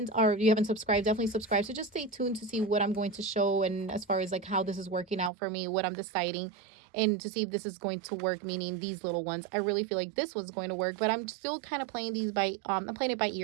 or if you haven't subscribed, definitely subscribe. So just stay tuned to see what I'm going to show, and as far as like how this is working out for me, what I'm deciding, and to see if this is going to work, meaning these little ones. I really feel like this was going to work, but I'm still kind of playing these by I'm playing it by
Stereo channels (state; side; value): drops out; left; at 5.3 s